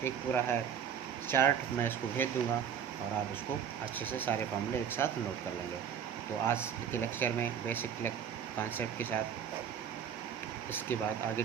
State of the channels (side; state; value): left; quieter; 8.1 dB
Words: एक पूरा है चार्ट, मैं इसको भेज दूंगा और आप इसको अच्छे से सारे फॉर्मूले एक साथ नोट कर लेंगे। तो आज के लेक्चर में बेसिक कॉन्सेप्ट के साथ इसके बाद आगे